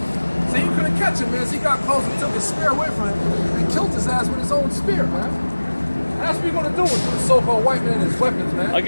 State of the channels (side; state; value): both; inverted; correlation -1.00